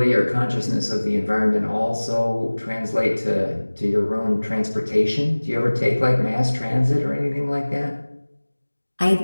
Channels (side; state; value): both; inverted; correlation -1.00